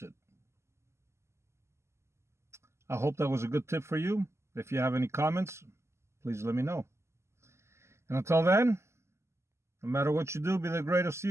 it. I hope that was a good tip for you. If you have any comments, please let me know. And until then, no matter what you do, be the greatest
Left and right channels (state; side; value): late; left; 0.13 ms